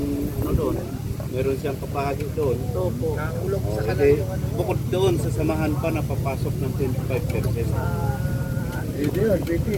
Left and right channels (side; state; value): both; identical; correlation 1.00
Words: doon. Meron siyang kapahagi doon. Bukod doon sa samahan pa na papasok ng 25%.